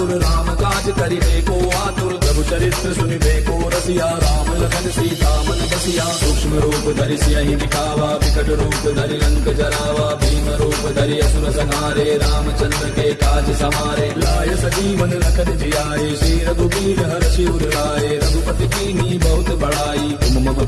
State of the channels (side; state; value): both; identical; correlation 1.00